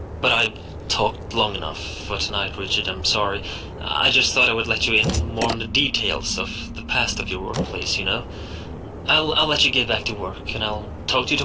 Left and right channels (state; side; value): identical; both; correlation 1.00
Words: But I've talked long enough for tonight, Richard, I'm sorry. I just thought I would let you in more on the details of the past of your workplace, you know? I'll let you get back to work, and I'll talk to you